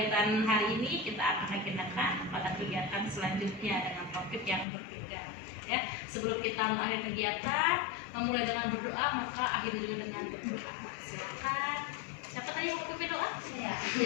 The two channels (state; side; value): drops out; right; at 4.7 s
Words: hari ini, kita akan agendakan pada kegiatan selanjutnya dengan topik yang berbeda ya. Sebelum kita mengakhiri kegiatan, memulai dengan berdoa, maka akhiri juga dengan berdoa. Silakan. Siapa tadi yang mau pimpin doa? Ya.